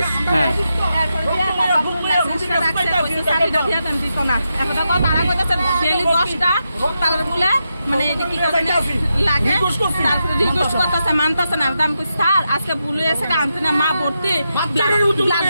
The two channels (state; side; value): inverted; both; correlation -0.86